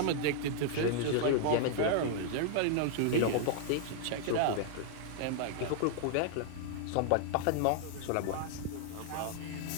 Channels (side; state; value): both; different; correlation -0.01